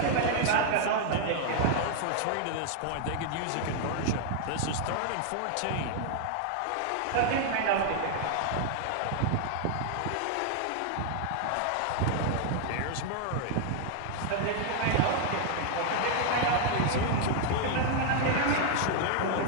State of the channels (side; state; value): both; different; correlation 0.00